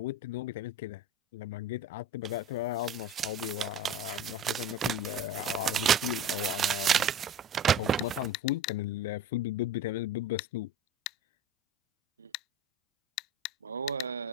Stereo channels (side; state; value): both; normal; correlation 0.33